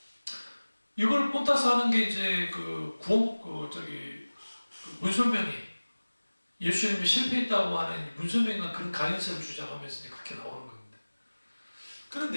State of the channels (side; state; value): both; inverted; correlation -1.00